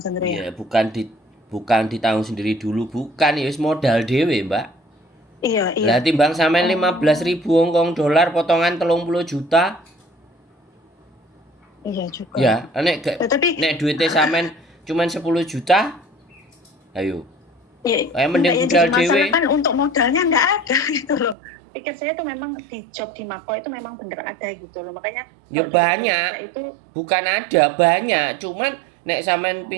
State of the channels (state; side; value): drops out; left; at 21.4 s